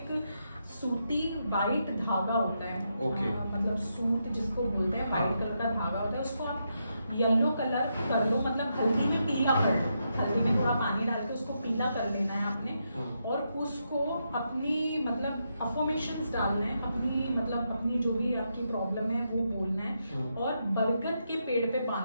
सूती वाइट धागा होता है, मतलब सूत जिसको बोलते हैं, वाइट कलर का धागा होता है, उसको आप येलो कलर कर लो, मतलब हल्दी में पीला कर लो, हल्दी में थोड़ा पानी डाल के उसको पीला कर लेना है आपने, और उसको अपनी मतलब अफर्मेशंस डालना है, अपनी जो भी आपकी प्रॉब्लम है वो बोलना है, और बरगद के पेड़ पे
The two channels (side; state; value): both; inverted; correlation -0.82